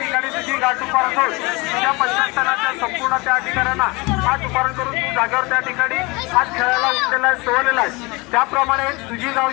तुझी गाठ उभारण करून तुझ्या पंचस्थानाच्या संपूर्ण त्या ठिकाणांना आज उभारण करून तू जागेवर त्या ठिकाणी आज खेळायला उठलेला आहे सोडलेला आहे। त्याप्रमाणे तुझी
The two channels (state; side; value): quieter; right; 25.5 dB